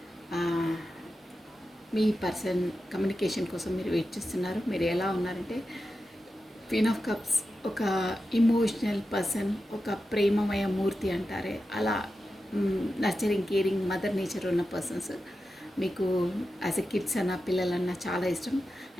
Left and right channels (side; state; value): both; normal; correlation 0.91